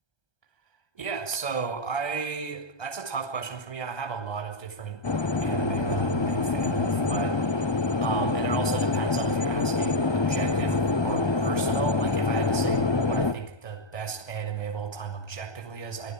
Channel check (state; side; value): late; right; 1.3 ms